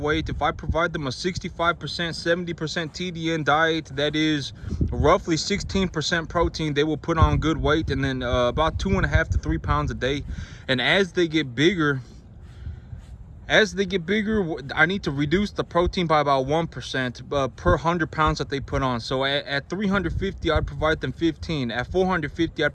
if I provide them a 65% 70% TDN diet, that is roughly 16% protein, they will put on good weight, and then about 2.5 to 3 pounds a day. And as they get bigger, I need to reduce the protein by about 1% per 100 pounds that they put on. So at 350, I'd provide them 15. At 450, I'd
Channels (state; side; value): identical; both; correlation 1.00